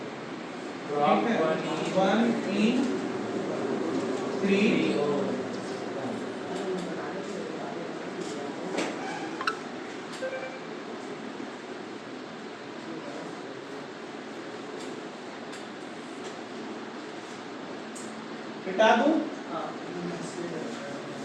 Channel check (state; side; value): identical; both; correlation 1.00